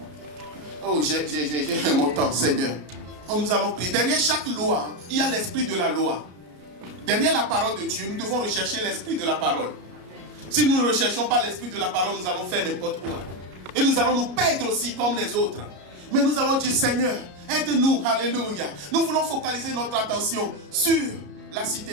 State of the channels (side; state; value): left; late; 33 ms